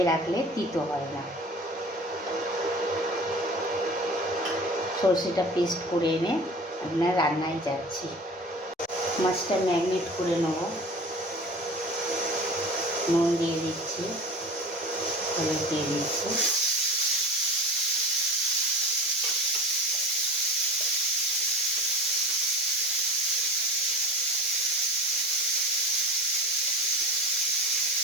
রাখলে তিতো হয় না। সর্ষেটা পেস্ট করে এনে আপনার রান্নায় যাচ্ছি। মাছটা ম্যারিনেট করে নেব, নুন দিয়ে দিচ্ছি, হলুদ দিয়ে দিচ্ছি,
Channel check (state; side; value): normal; both; correlation 0.35